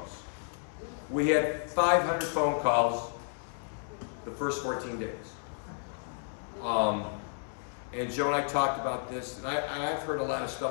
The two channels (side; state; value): right; silent; digital silence